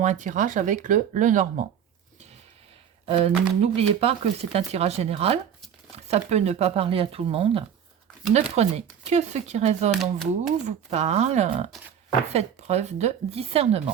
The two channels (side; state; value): left; quieter; 8.5 dB